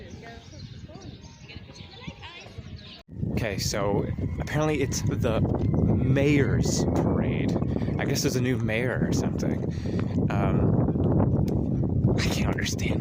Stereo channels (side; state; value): both; identical; correlation 1.00